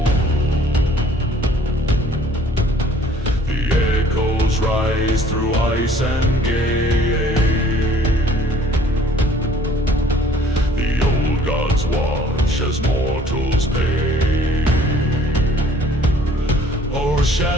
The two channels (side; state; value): both; normal; correlation 0.56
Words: The echoes rise through ice and gale. The old gods watch as mortals pay.